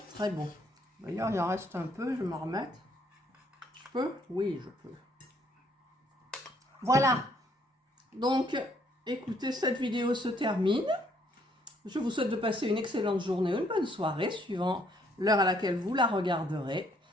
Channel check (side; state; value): both; normal; correlation 0.67